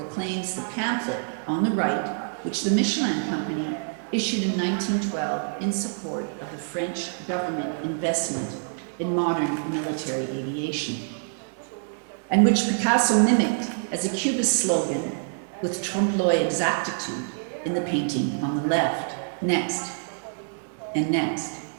the pamphlet on the right, which the Michelin Company issued in 1912 in support of the French government investment in modern military aviation, and which Picasso mimicked as a Cubist slogan with trompe-l'oeil exactitude in the painting on the left. Next, and next.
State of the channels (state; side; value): silent; left; digital silence